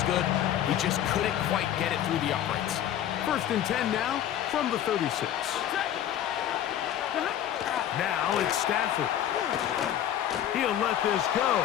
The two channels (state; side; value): quieter; right; 10.9 dB